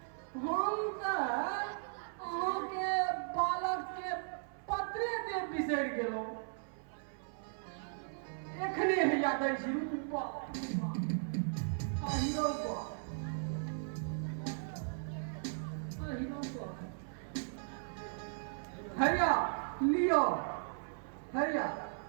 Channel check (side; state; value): left; silent; 53 dB below the other